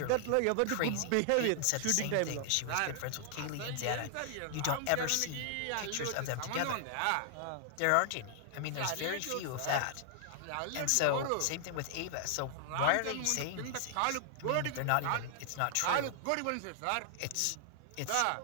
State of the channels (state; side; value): different; both; correlation -0.01